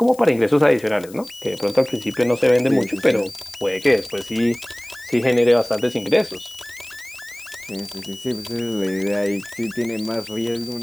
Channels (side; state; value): left; noise; hiss, 21 dB below the sound